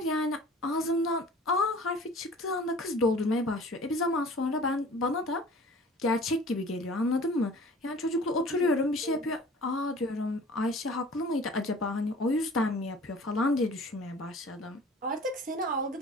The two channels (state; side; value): normal; both; correlation 0.46